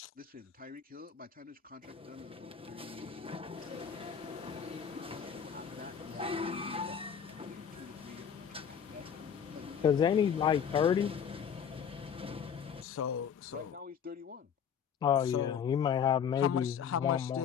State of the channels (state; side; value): quieter; right; 7.7 dB